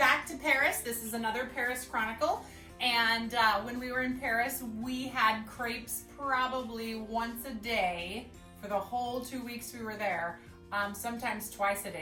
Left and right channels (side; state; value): both; identical; correlation 1.00